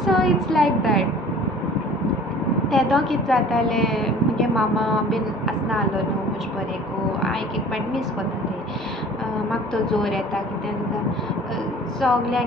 So it's like that. तेदो कितें जातालें म्हगे मामा बीन आसना आहलो न्हू म्हजे बरेको, हांव एक पाट मीस कोत्तालें. म्हाका तो जोर येता कितें जाता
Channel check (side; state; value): both; normal; correlation 0.47